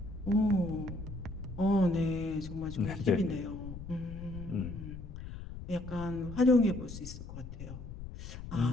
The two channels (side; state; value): left; noise; rumble, 10 dB below the sound